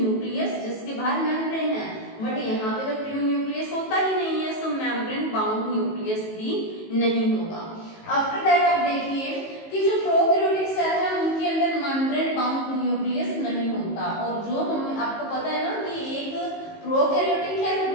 जिसके बाहर मेम्ब्रेन है। बट यहाँ पे तो ट्रू न्यूक्लियस होता ही नहीं है, सो मेम्ब्रेन बाउंड न्यूक्लियस भी नहीं होगा। आफ्टर दैट आप देखिए कि जो प्रोकैरियोटिक सेल है उनके अंदर मेम्ब्रेन बाउंड न्यूक्लियस नहीं होता। और जो हम आपको पता है ना कि एक प्रोकैरियोटिक है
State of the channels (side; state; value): right; late; 19 ms